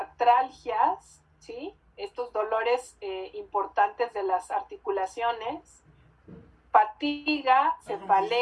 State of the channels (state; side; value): identical; both; correlation 1.00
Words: ¿sí? Estos dolores importantes de las articulaciones, fatiga,